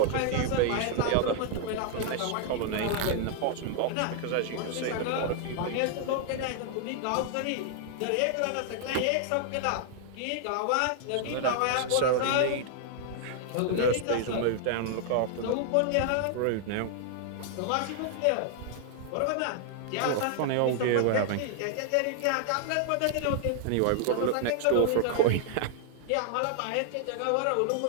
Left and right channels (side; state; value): both; different; correlation 0.00